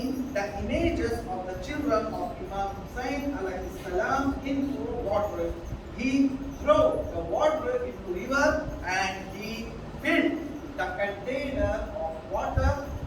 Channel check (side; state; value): both; identical; correlation 1.00